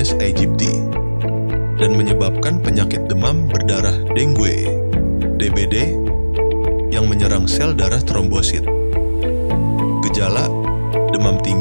aegypti dan menyebabkan penyakit demam berdarah dengue, DBD, yang menyerang sel darah trombosit. Gejala: demam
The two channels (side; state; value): both; inverted; correlation -1.00